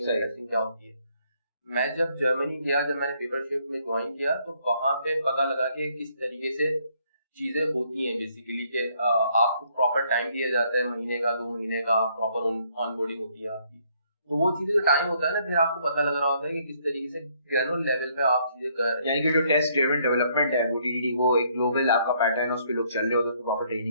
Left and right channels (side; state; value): both; inverted; correlation -0.68